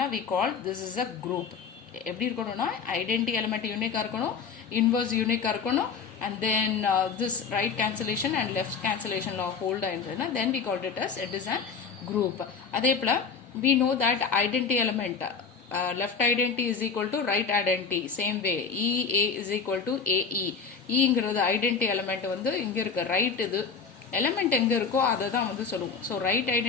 we call this is a group. எப்படி இருக்கணும்னா ஐடென்டி எலிமெண்ட் யூனிக்காக இருக்கணும், இன்வர்ஸ் யூனிக்காக இருக்கணும், and then this right cancellation and left cancellation law hold ஆயிருந்ததுன்னா then we called it as it is an group. அதே போல we know that identity element left identity is equal to right identity, same way EA is equal to AE. ங்கிறது identity element வந்து இங்க இருக்கு, ரைட் இது எலிமெண்ட் எங்க இருக்கோ அதை தான் வந்து சொல்லுவோம். So right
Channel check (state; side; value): quieter; right; 5.7 dB